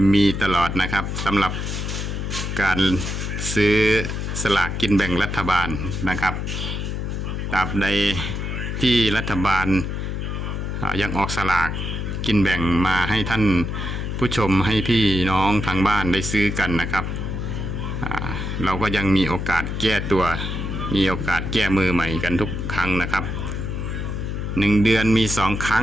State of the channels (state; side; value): noise; left; hum, 3 dB below the sound